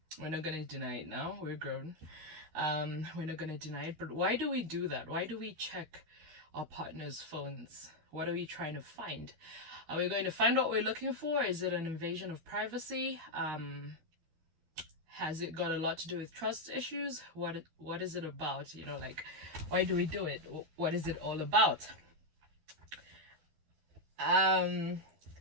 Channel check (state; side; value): late; left; 13 ms